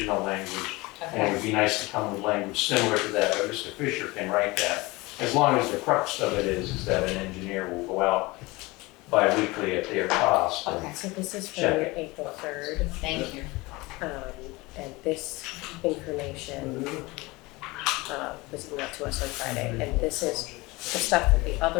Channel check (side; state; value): right; quieter; 22.7 dB